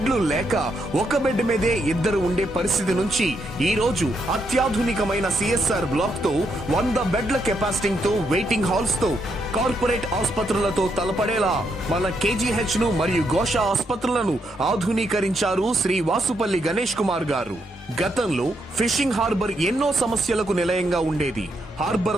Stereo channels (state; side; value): normal; both; correlation 0.78